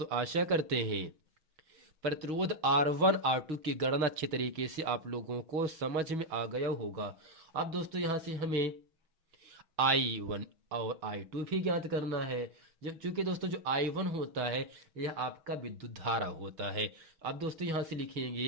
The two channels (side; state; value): left; late; 6.3 ms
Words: आशा करते हैं प्रतिरोध R1 R2 की गणना अच्छे तरीके से आप लोगों को समझ में आ गया होगा। अब दोस्तों यहाँ से हमें I1 और I2 भी ज्ञात करना है, जब चूंकि दोस्तों जो I1 होता है यह आपका विद्युत धारा होता है। अब दोस्तों यहाँ से